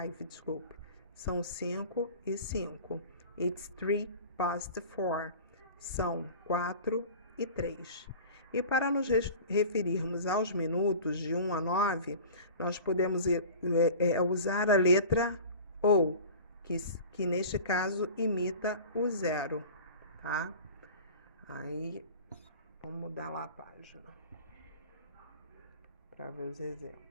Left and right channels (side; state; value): both; inverted; correlation -0.39